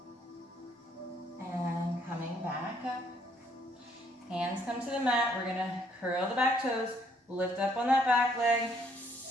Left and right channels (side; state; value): both; normal; correlation 0.67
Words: And coming back up. Hands come to the mat. We're gonna curl the back toes, lift up on that back leg,